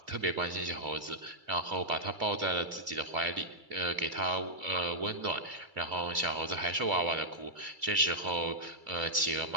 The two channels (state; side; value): late; left; 2.3 ms